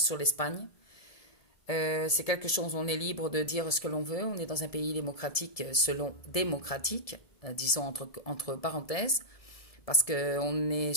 sur l'Espagne. C'est quelque chose, on est libre de dire ce que l'on veut. On est dans un pays démocratique, selon démocratique, disons entre parenthèses, parce qu'on est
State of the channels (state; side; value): late; right; 1.7 ms